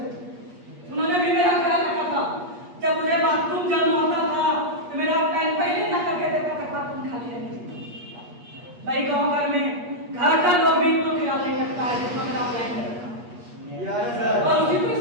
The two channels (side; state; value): left; late; 8.4 ms